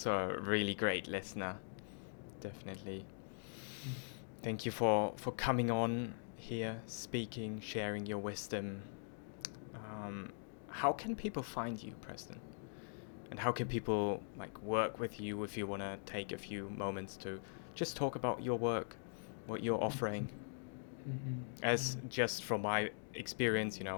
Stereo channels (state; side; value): silent; right; digital silence